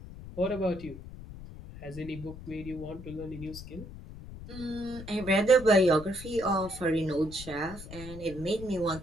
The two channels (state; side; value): noise; left; rumble, 13 dB below the sound